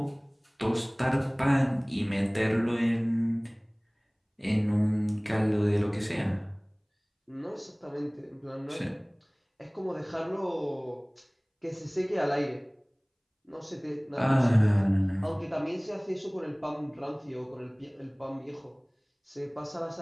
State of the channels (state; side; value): identical; both; correlation 1.00